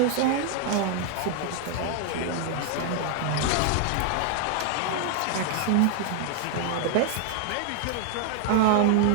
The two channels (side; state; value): both; different; correlation 0.00